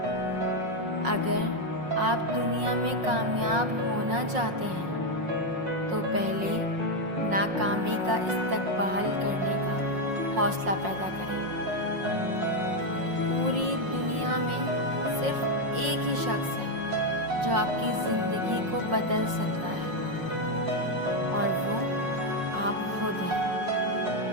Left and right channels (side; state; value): left; late; 5.5 ms